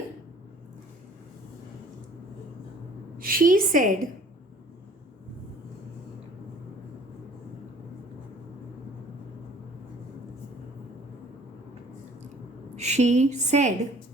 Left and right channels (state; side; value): normal; both; correlation 0.53